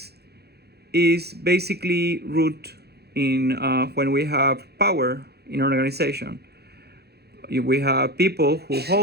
is basically root in when we have power in an organization. We have people who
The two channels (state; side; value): late; left; 0.47 ms